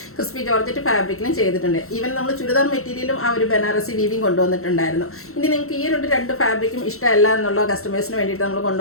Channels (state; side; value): late; right; 0.63 ms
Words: ക്രിസ്പി ജോർജറ്റ് ഫാബ്രിക്കിലും ചെയ്തിട്ടുണ്ട്. ഈവൻ നമ്മൾ ചുരിദാർ മെറ്റീരിയലും ആ ഒരു ബനാറസി വീവിങ് കൊണ്ടുവന്നിട്ടുണ്ടായിരുന്നു. ഇനി നിങ്ങൾക്ക് ഈ രണ്ട് ഫാബ്രിക്കും ഇഷ്ടമല്ല എന്നുള്ള കസ്റ്റമേഴ്സിന് വേണ്ടിയിട്ട് നമ്മൾ